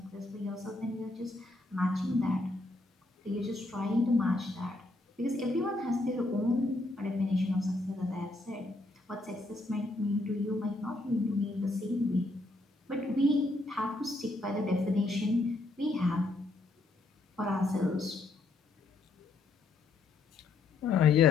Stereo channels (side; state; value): right; quieter; 3.0 dB